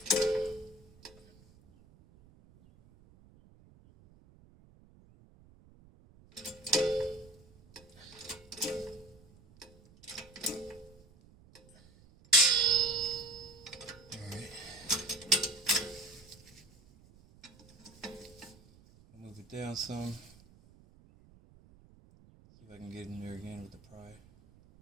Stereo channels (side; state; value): right; noise; rumble, 25 dB below the sound